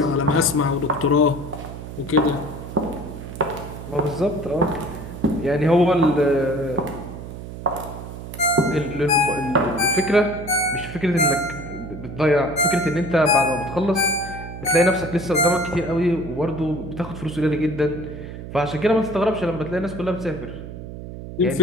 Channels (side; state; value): right; noise; hum, 11 dB below the sound